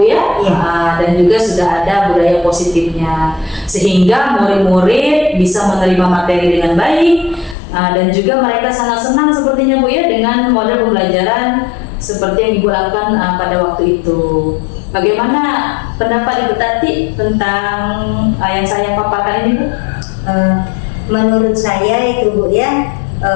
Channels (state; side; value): drops out; right; at 7.6 s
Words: ya, dan juga sudah ada budaya positifnya, sehingga murid-murid bisa menerima materi dengan baik, dan juga mereka sangat senang sepertinya, Bu ya, dengan model pembelajaran seperti yang Ibu lakukan pada waktu itu. Bagaimana pendapat Ibu Tati tentang yang saya paparkan ini, Bu? Menurut saya itu, Bu ya,